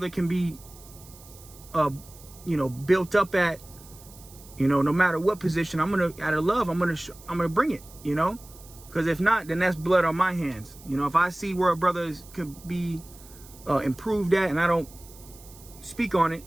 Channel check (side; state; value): right; noise; hiss, 21 dB below the sound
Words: can be, you know, built up at, you know, no matter what position, I'm going to, out of love, I'm going to bring it, you know, because if not, then that's blood on my hands. You know, if I see where a brother could be improved at and I don't speak on it,